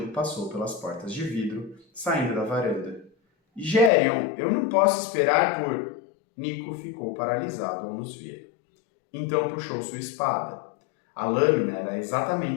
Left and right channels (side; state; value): right; drops out; at 3.9 s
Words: passou pelas portas de vidro, saindo da varanda. Gérion, eu não posso esperar por... Nico ficou paralisado ao nos ver. Então puxou sua espada. A lâmina era